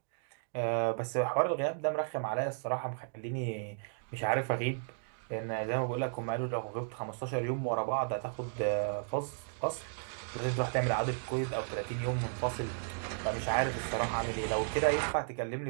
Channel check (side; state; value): left; silent; digital silence